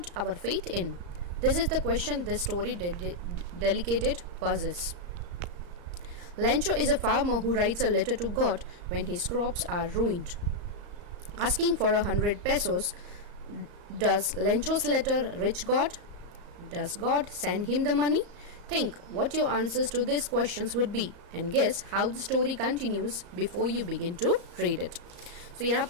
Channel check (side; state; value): left; late; 34 ms